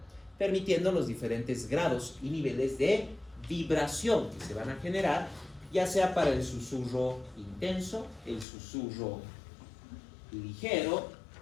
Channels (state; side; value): drops out; right; at 8.5 s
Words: permitiendo los diferentes grados y niveles de vibración que se van a generar, ya sea para el susurro intenso, el susurro ligero